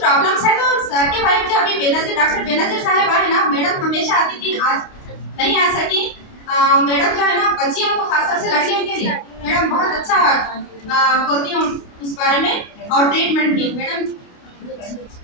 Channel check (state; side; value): late; right; 28 ms